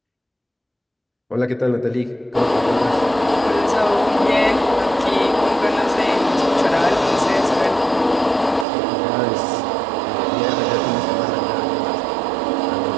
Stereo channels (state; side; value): drops out; left; at 8.7 s